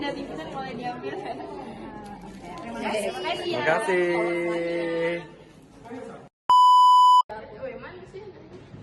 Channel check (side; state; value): both; identical; correlation 1.00